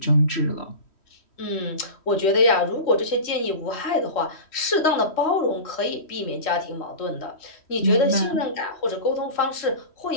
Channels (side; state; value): right; late; 3.1 ms